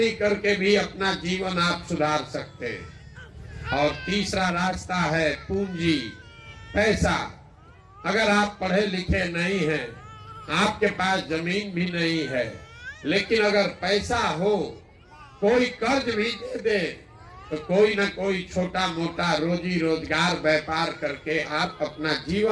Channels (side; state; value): both; identical; correlation 1.00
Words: करके भी अपना जीवन आप सुधार सकते हैं। और तीसरा रास्ता है पूंजी, पैसा। अगर आप पढ़े लिखे नहीं हैं, आपके पास जमीन भी नहीं है, लेकिन अगर पैसा हो, कोई कर्ज भी दे दे तो कोई ना कोई छोटा मोटा रोजी रोजगार व्यापार करके आप अपना